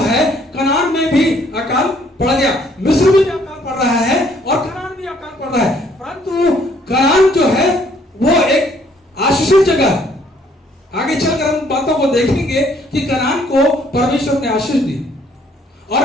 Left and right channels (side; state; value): both; normal; correlation 0.64